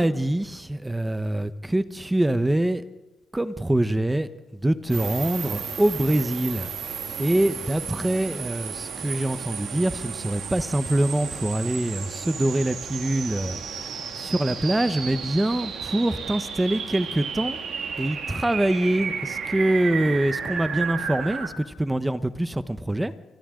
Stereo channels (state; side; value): normal; both; correlation 0.96